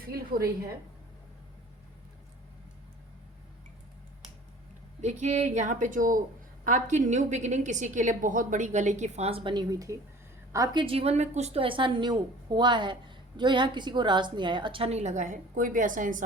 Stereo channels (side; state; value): both; normal; correlation 0.46